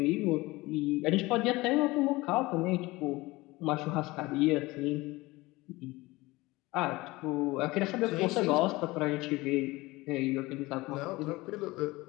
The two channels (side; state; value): right; quieter; 21.0 dB